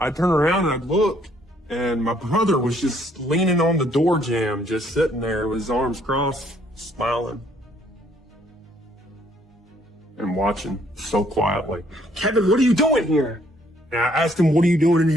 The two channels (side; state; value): both; normal; correlation 0.65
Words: turned around and I looked, and my brother was just leaning on the door jamb, just sitting there with his arms crossed, smiling. And watching so quietly. Kevin, what are you doing here? And I asked him, what are you doing in